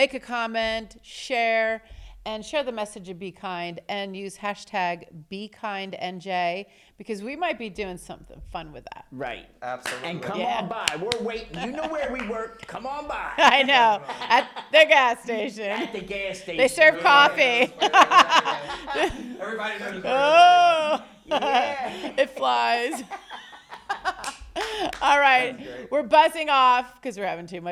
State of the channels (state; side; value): identical; both; correlation 1.00